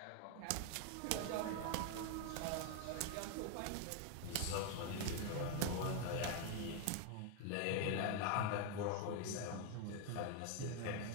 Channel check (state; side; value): different; both; correlation 0.01